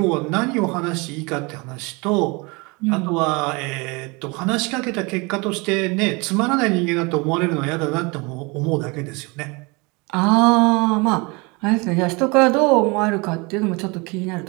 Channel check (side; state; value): left; quieter; 27.5 dB